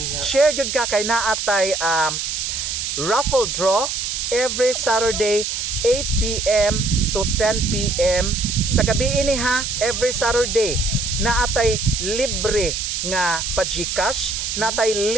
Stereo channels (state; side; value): noise; right; hiss, 3 dB below the sound